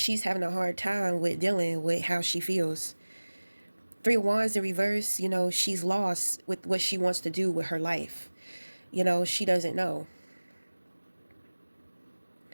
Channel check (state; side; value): inverted; both; correlation -1.00